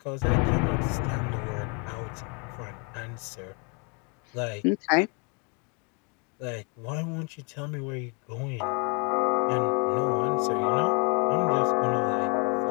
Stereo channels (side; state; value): right; quieter; 34.5 dB